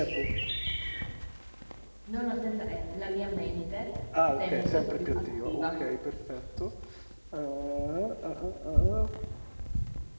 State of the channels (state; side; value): inverted; both; correlation -1.00